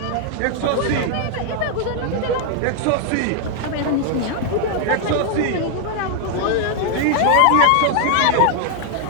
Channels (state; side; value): different; both; correlation 0.00